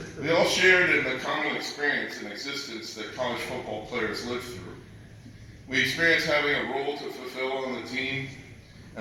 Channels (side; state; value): both; identical; correlation 1.00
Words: We all shared in the common experience and existence that college football players live through. We experienced having a role to fulfill on the team,